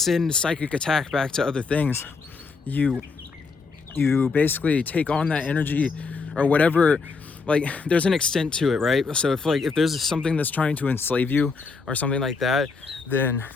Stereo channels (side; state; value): right; quieter; 4.6 dB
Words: psychic attack back to other things, you basically take on that energy or whatever. Like there's an extent to it, right? So if there's something that's trying to enslave you or something like that, then